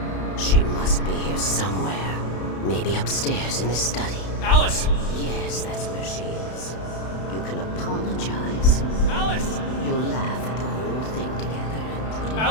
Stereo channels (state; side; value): late; right; 32 ms